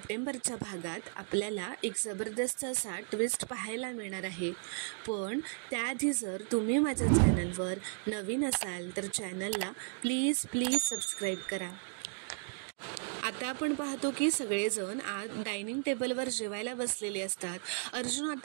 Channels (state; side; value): silent; left; 55 dB below the other